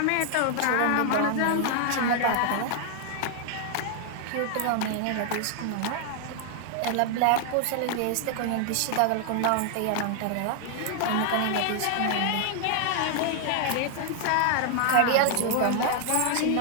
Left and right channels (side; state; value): both; different; correlation 0.00